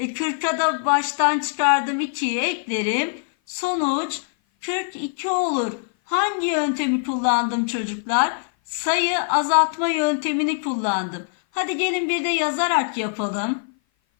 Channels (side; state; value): right; silent; 56 dB below the other